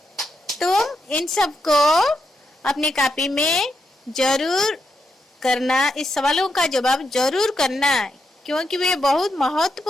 तुम इन सब को अपनी कॉपी में जरूर करना, इस सवालों का जवाब जरूर करना, क्योंकि वे बहुत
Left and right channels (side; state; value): both; normal; correlation 0.83